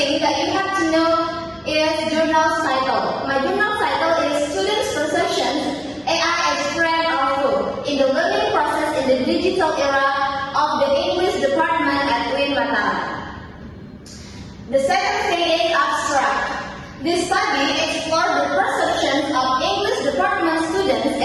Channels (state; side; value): identical; both; correlation 1.00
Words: that you have to know is journal's title. My journal title is Students' Perceptions, AI as Friend or Foe in the Learning Process in the Digital Era of the English Department at UIN Mataram. The second thing is abstract. This study explored the perceptions of English department students